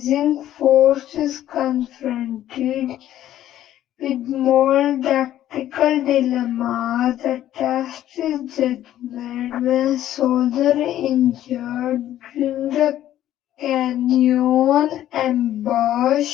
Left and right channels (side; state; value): right; quieter; 12.5 dB